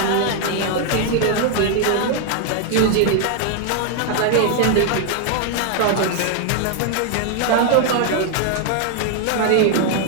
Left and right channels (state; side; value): different; both; correlation 0.00